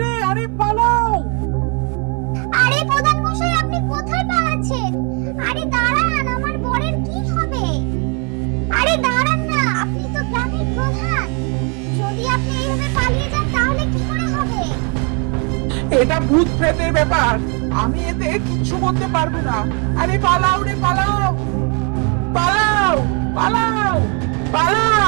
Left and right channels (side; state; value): left; quieter; 35.5 dB